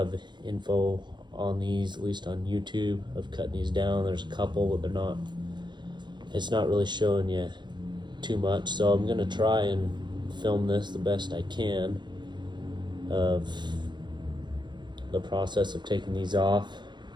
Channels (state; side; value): late; left; 0.22 ms